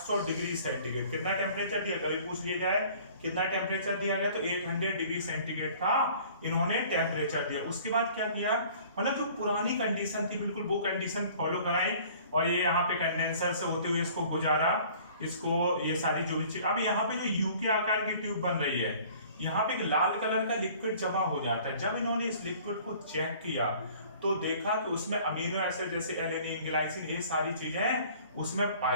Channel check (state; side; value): inverted; both; correlation -0.51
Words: डिग्री सेंटीग्रेड, कितना टेम्परेचर दिया कभी पूछ लिया जाए, कितना टेम्परेचर दिया गया, तो 800 डिग्री सेंटीग्रेड का इन्होंने टेम्परेचर दिया। उसके बाद क्या किया, मतलब जो पुरानी कंडीशन थी बिल्कुल वो कंडीशन फॉलो कराई, और ये यहाँ पे कंडेंसर से होते हुए इसको गुजारा, इसको ये सारी जो भी चीज। अब यहाँ पे जो यू के आकार की ट्यूब बन रही है, यहाँ पे एक लाल कलर का लिक्विड जमा हो जाता है। जब इन्होंने इस लिक्विड को चेक किया तो देखा कि उसमें अमीनो एसिड जैसे एलेनिन, ग्लाइसिन, ये सारी चीजें उसमें